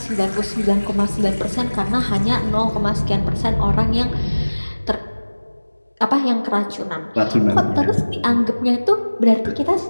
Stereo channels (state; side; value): inverted; both; correlation -1.00